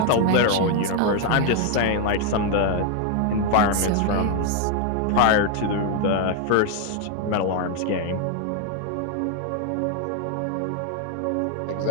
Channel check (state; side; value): different; both; correlation 0.01